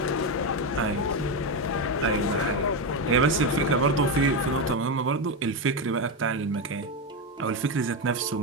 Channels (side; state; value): both; normal; correlation 0.10